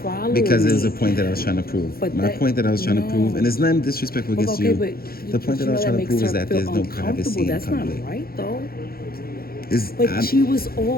follow because me. there's a point that I was trying to prove. But My point that I was trying to prove, and it's nothing disrespectful But against okay, you. but The point that I was trying to prove is that there's no privacy in That's public. not right, though. It's, But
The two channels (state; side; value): late; right; 0.44 ms